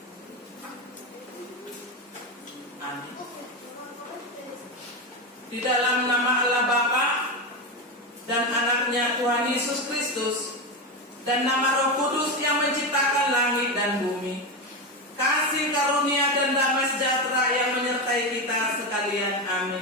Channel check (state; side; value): normal; both; correlation 0.15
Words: Amin. Di dalam nama Allah Bapa dan anaknya Tuhan Yesus Kristus dan nama Roh Kudus yang menciptakan langit dan bumi, kasih karunia dan damai sejahtera yang menyertai kita sekalian.